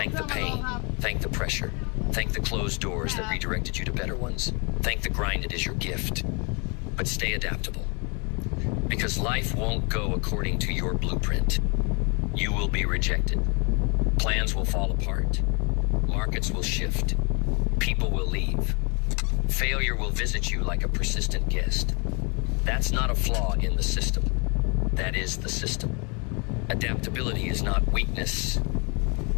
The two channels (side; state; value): right; quieter; 33.4 dB